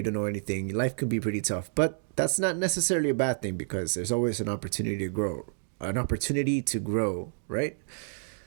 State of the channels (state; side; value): silent; left; digital silence